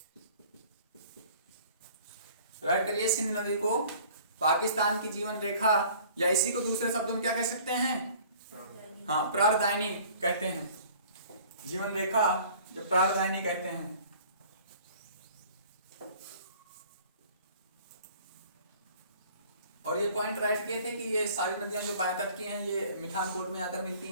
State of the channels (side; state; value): both; inverted; correlation -0.50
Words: राइट करिए, सिंध नदी को पाकिस्तान की जीवन रेखा या इसी को दूसरे शब्दों में क्या कह सकते हैं, हाँ प्राणदायिनी कहते हैं। जीवन रेखा जो प्राणदायिनी कहते हैं। और ये पॉइंट राइट किए थे कि ये सारी नदियां जो बाएं तट की हैं ये मिठानकोट में आकर मिलती